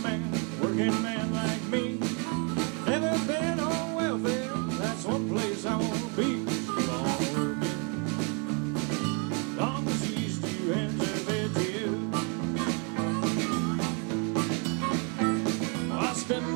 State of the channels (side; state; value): left; quieter; 34.4 dB